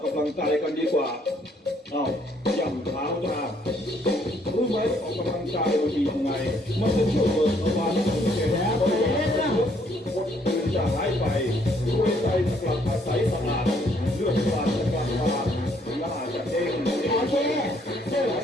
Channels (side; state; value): both; normal; correlation 0.67